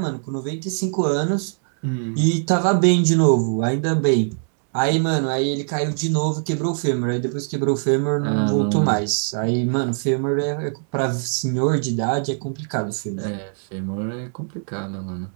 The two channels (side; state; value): left; silent; digital silence